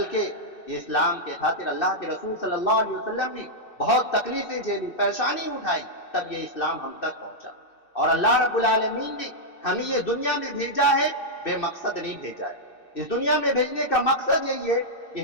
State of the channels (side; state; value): right; late; 2.6 ms